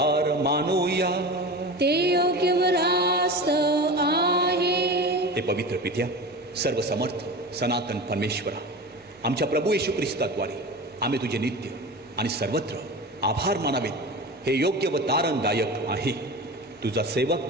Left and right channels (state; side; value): normal; both; correlation 0.30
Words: मानूया. ते योग्य व रास्त आहे. हे पवित्र पित्या, सर्वसमर्थ सनातन परमेश्वरा, आमच्या प्रभू येशू ख्रिस्ताद्वारे आम्ही तुझे नित्य आणि सर्वत्र आभार मानावेत. हे योग्य व तारणदायक आहे. तुझा सेवक